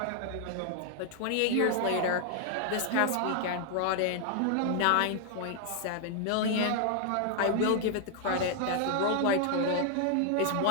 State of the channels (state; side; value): different; both; correlation 0.00